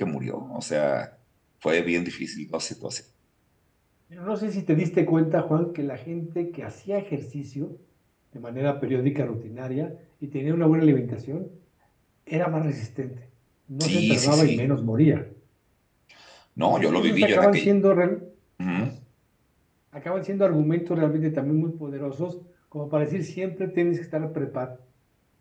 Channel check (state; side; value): identical; both; correlation 1.00